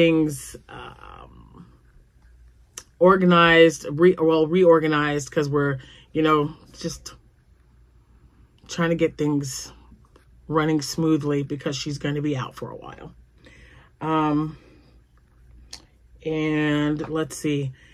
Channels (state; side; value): identical; both; correlation 1.00